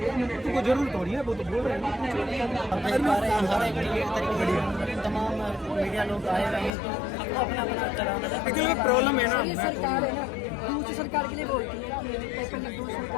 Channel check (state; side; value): drops out; right; at 6.7 s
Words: जरूर थोड़ी है, वो तो बोल रहे हैं। अब देख पा रहे हैं हर एक तरीके तमाम मीडिया लोग आए हुए हैं तो सबको अपना अपना चलाना है। एक्चुअली प्रॉब्लम है ना, ये सरकार है ना, दूसरी सरकार के लिए बोलती है कि पेपर लीक दूसरी